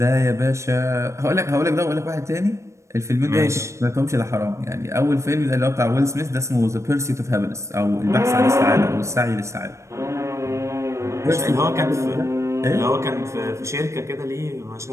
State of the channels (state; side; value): late; left; 0.14 ms